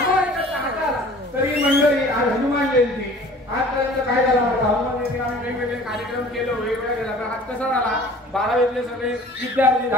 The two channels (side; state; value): both; normal; correlation 0.47